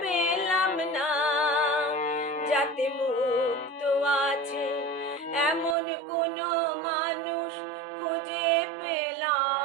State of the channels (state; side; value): drops out; left; at 5.8 s